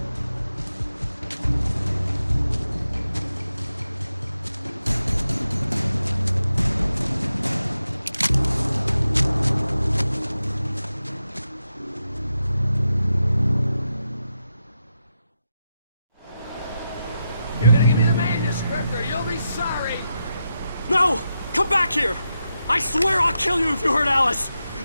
You're gonna give me the manuscript or you'll be sorry. No! Come back here! I swear I'll kill you if you hurt Alice!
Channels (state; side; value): inverted; both; correlation -0.87